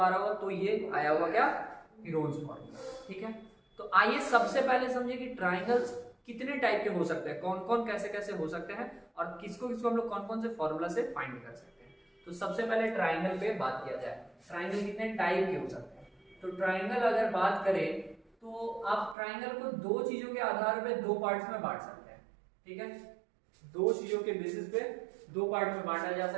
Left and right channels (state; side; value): drops out; left; at 19.2 s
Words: रहा होगा, तो ये आया होगा क्या? Heron's formula. ठीक है, तो आइए सबसे पहले समझे कि ट्राइंगल्स कितने टाइप के हो सकते हैं, कौन कौन कैसे कैसे हो सकते हैं, और किसको किसको हम लोग कौन कौन से फॉर्मूला से फाइंड कर सकते हैं। तो सबसे पहले ट्राइंगल पे बात किया जाए। ट्राइंगल कितने टाइप के हो सकते हैं? तो ट्राइंगल अगर बात करें तो आप ट्राइंगल को दो चीजों के आधार पे दो पार्ट्स में बांट सकते हैं। ठीक है, दो चीजों के बेसिस पे दो पार्ट में बांटा जा